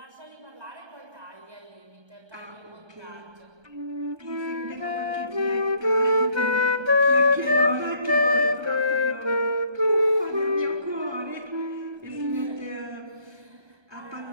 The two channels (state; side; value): late; left; 1.3 ms